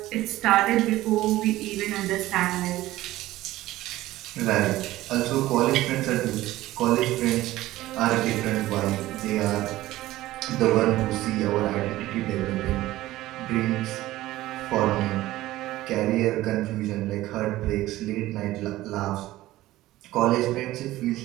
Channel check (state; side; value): quieter; left; 16.3 dB